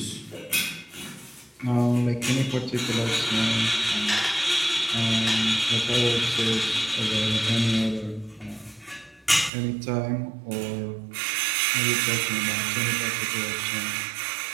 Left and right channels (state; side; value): drops out; left; at 9.5 s